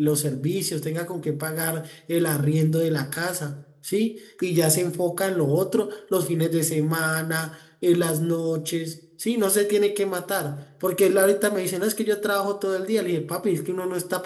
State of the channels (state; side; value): identical; both; correlation 1.00